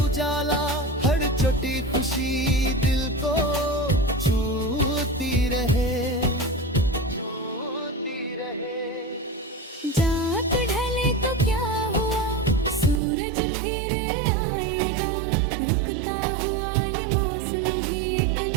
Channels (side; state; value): left; drops out; at 13.0 s